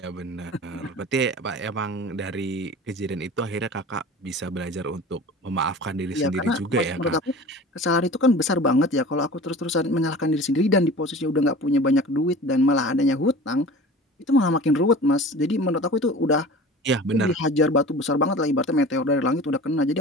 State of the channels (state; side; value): normal; both; correlation 0.39